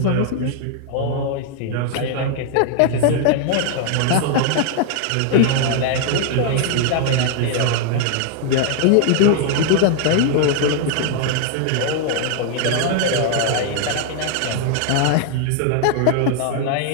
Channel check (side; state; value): both; different; correlation 0.00